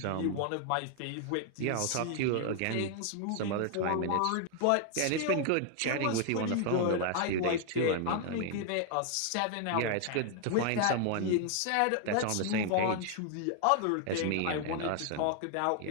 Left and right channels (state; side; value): different; both; correlation 0.00